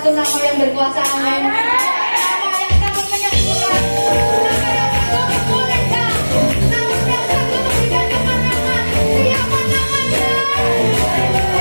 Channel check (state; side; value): inverted; both; correlation -1.00